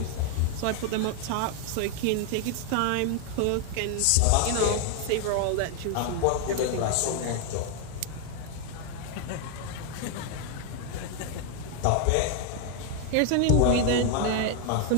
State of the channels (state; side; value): different; both; correlation 0.00